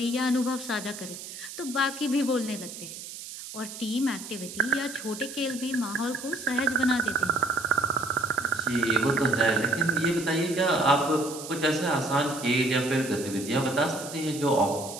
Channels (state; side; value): noise; right; hiss, 11 dB below the sound